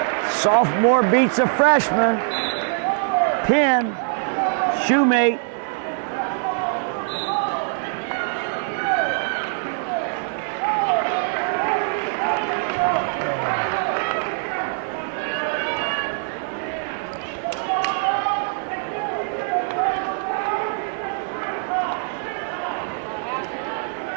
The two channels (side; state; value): left; silent; digital silence